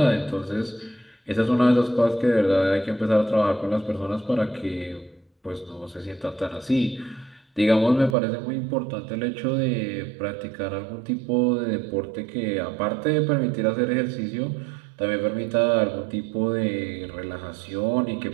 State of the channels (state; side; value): drops out; left; at 8.2 s